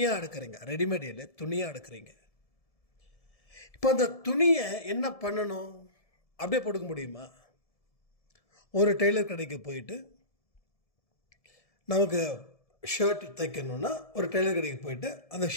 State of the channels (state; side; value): late; right; 1.7 ms